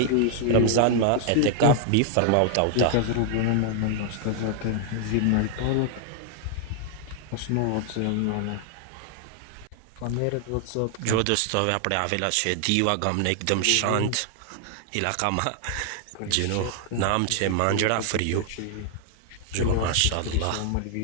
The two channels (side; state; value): both; different; correlation 0.00